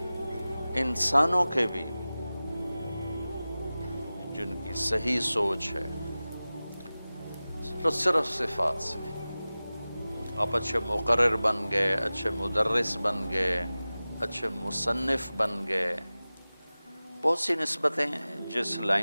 انسانوں کے بھی جن کی صحیح سوچ ہے، صرف صفات سے۔ آپ اچھے مقرر بن گئے، اچھے مدرس بن گئے، اچھے مصنف بن گئے، بہت سی نسبتیں جس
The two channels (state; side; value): inverted; both; correlation -0.97